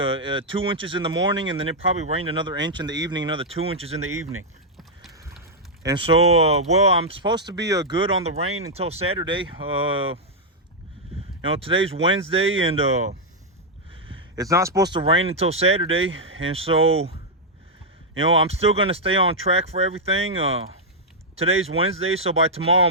inches in the morning, and then it probably rained another inch in the evening, another 2 inches in the evening. And so, well, I'm supposed to be good on the rain until Saturday. Today's Wednesday, and it's not supposed to rain until Saturday. And so, I'm still going to stay on track for everything. Today's Wednesday, so by tomorrow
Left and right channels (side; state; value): both; normal; correlation -0.04